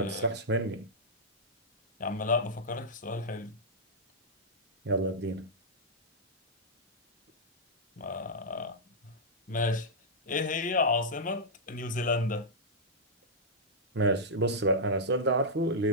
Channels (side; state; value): both; normal; correlation -0.08